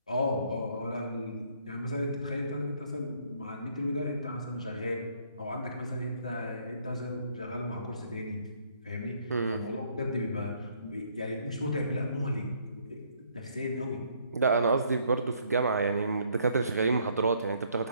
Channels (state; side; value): inverted; both; correlation -0.66